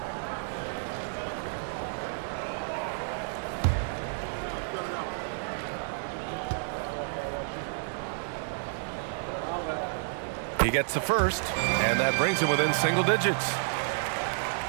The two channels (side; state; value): left; silent; digital silence